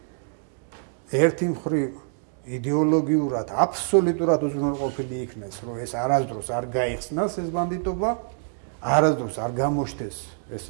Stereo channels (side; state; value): left; silent; 61 dB below the other